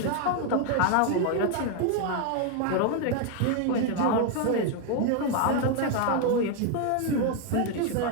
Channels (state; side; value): different; both; correlation 0.01